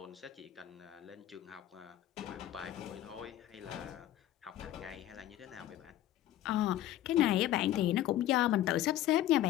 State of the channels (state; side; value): quieter; right; 13.2 dB